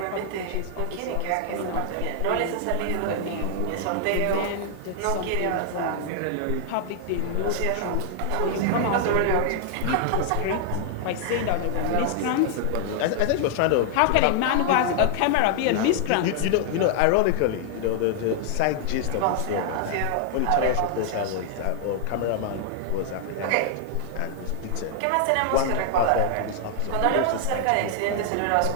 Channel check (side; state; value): both; different; correlation 0.00